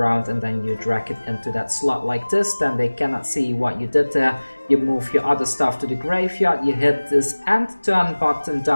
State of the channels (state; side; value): inverted; both; correlation -1.00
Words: and then you drag it into that slot like this. Then they cannot see what you did there. You move your other stuff to the graveyard, you hit this end turn button